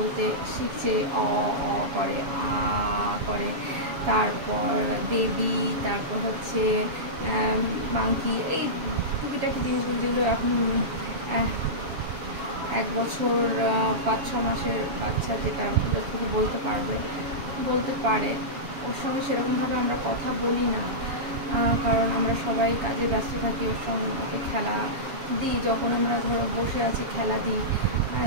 শিখছে, অ অ করে, আ করে, তারপর বেবি, তারপর হচ্ছে মাংকি, এই টুকিটাকি জিনিসগুলো যেগুলো এখন 1 বছর 5-6 মাসের বাচ্চা যেটা যতটুকু বলতে পারে, ওর সঙ্গে সেরকমভাবে আমরা কথা বলি না, কারণ আমরা সবাই কাজে ব্যস্ত থাকি। ওর সঙ্গে ওকে খেলা দিই, যখন আমরা ধরো বসে আছি খেলা দিই।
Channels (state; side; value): late; left; 7.2 ms